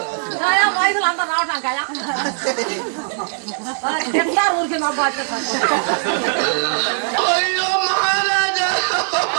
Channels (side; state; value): left; silent; 66 dB below the other